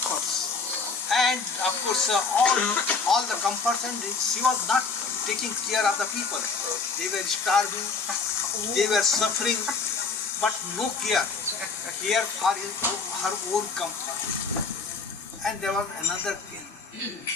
and of course all the comforts, and she was not taking care of the people. They were starving, they were suffering, but no care for her own comfort. And there was another king,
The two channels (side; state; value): right; quieter; 4.7 dB